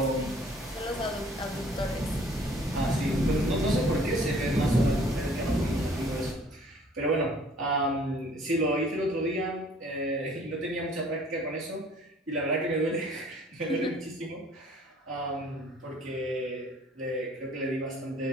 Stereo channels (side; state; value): both; normal; correlation 0.55